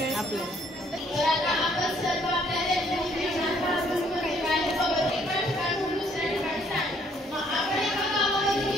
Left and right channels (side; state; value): both; normal; correlation 0.65